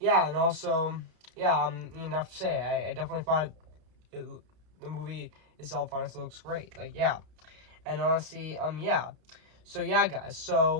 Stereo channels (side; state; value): left; late; 32 ms